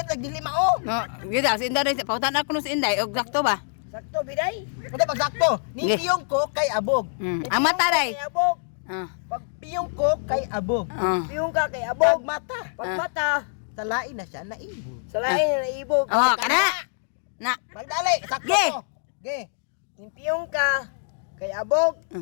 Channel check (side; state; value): right; silent; digital silence